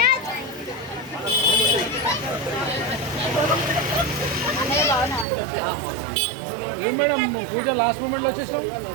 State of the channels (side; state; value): left; drops out; at 5.2 s